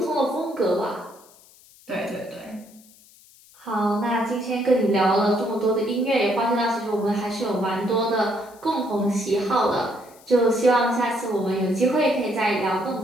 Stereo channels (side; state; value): left; noise; hiss, 26 dB below the sound